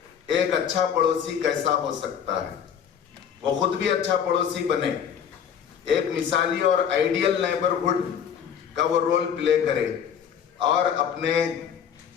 एक अच्छा पड़ोसी कैसा हो सकता है. वो खुद भी अच्छा पड़ोसी बने, एक मिसाली और आइडियल नेबरहुड का वो रोल प्ले करे और अपने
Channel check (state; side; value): quieter; right; 8.2 dB